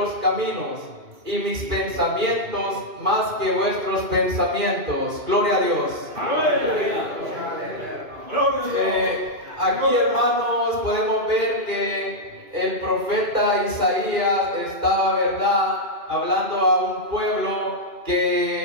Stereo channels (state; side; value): late; left; 2.5 ms